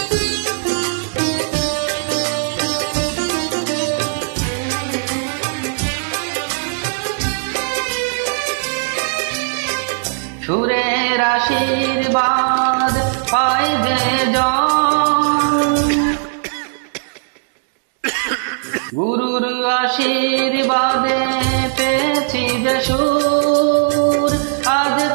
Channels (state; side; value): silent; left; digital silence